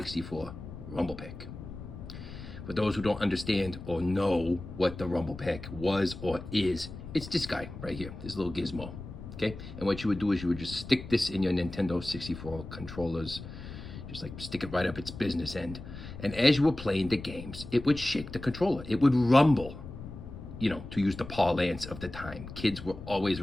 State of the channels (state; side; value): noise; left; rumble, 12 dB below the sound